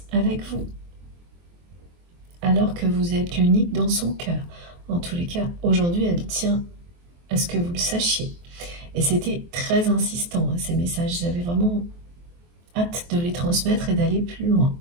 avec vous. Alors que vous êtes l'unique dans son cœur. En tous les cas, aujourd'hui, elle tient à ce que vous le sachiez. Et c'était très insistant, ces messages. J'avais vraiment hâte de les transmettre et d'aller plus loin.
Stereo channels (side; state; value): left; late; 23 ms